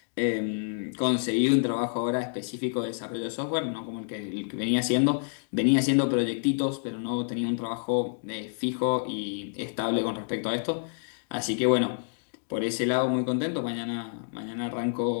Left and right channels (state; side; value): silent; right; digital silence